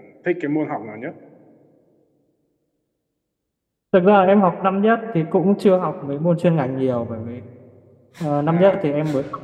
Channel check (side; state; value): both; identical; correlation 1.00